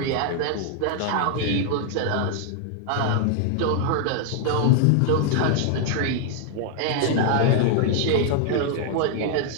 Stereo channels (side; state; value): both; different; correlation 0.00